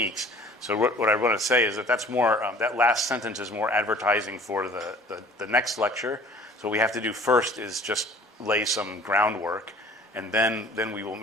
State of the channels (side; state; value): both; normal; correlation 0.50